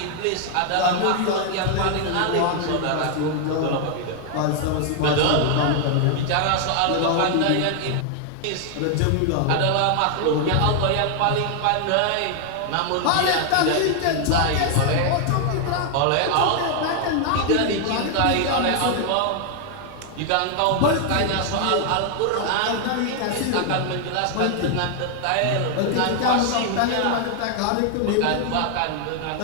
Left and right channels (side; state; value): both; different; correlation 0.00